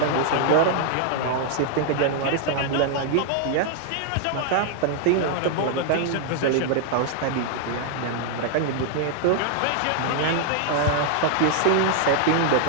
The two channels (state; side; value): different; both; correlation -0.01